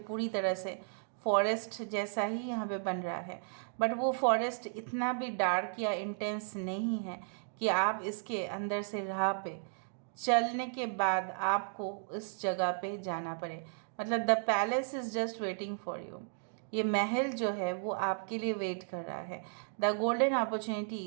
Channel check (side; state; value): left; silent; digital silence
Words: तरह से फॉरेस्ट जैसा ही यहाँ पे बन रहा है, बट वो फॉरेस्ट इतना भी डार्क या इंटेंस नहीं है कि आप इसके अंदर से राह पे चलने के बाद आपको इस जगह पे जाना पड़े। मतलब the palace is just waiting for you. ये महल जो है वो आपके लिए वेट कर रहा है। The golden